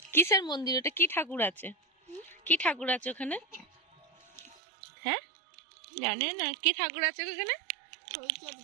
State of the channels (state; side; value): drops out; left; at 4.5 s